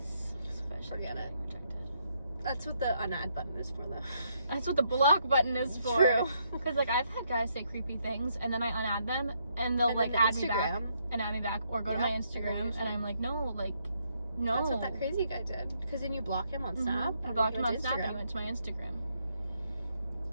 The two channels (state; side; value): inverted; both; correlation -0.75